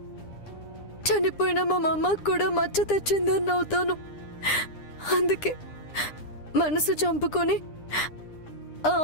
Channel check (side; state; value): right; late; 9.9 ms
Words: చనిపోయిన మా అమ్మకు కూడా మచ్చ తెచ్చిందని అవుతాను. అందుకే మనసు చంపుకొని ఆ